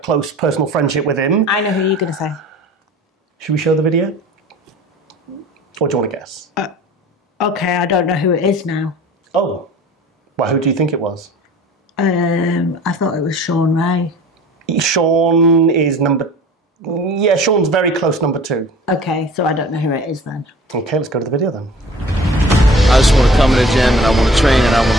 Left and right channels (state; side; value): normal; both; correlation 0.45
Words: personal friendship with him. I know who you're going to say. Should we show the video? Or do you want to guess? Okay, I don't know who it is now. Oh. Well, who do you think it was? I thought it was Sean Ray. Sean is Sean's very close number 2. Okay, so I don't know who it is then. Okay, let's go to the video then. I just want to come in the gym and I want to train and I want